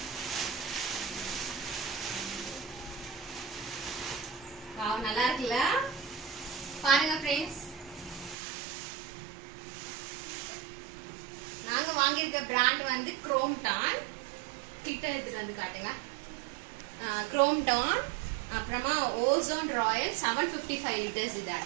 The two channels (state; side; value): drops out; left; at 8.3 s